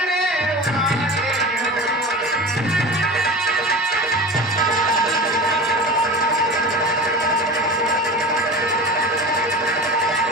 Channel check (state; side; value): normal; both; correlation 0.32